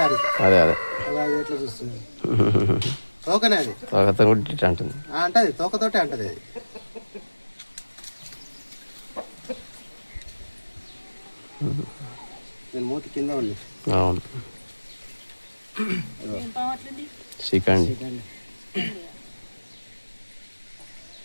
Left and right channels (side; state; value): both; inverted; correlation -1.00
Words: అదే ఎట్లా చూస్తుంది తోకనే, అది అంటది, తోకతోటే అంటది అది. నేను మూతి కింద ఉంది.